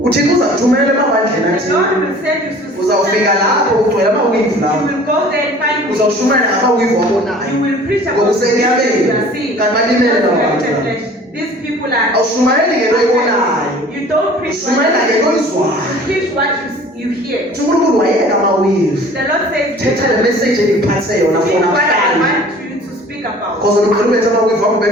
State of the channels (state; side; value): normal; both; correlation 0.47